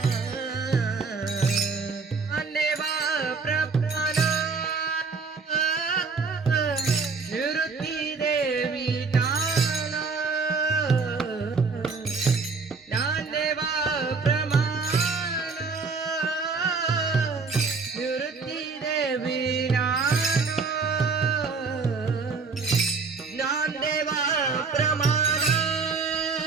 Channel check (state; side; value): quieter; left; 4.7 dB